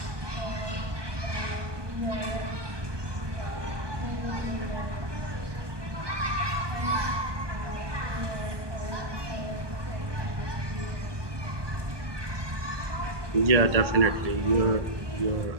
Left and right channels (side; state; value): left; late; 1.2 ms